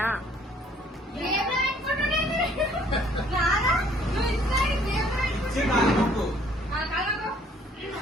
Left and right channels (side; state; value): both; normal; correlation 0.60